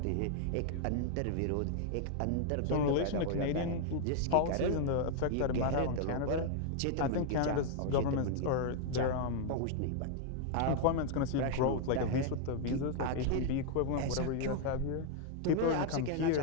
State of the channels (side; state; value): both; different; correlation 0.00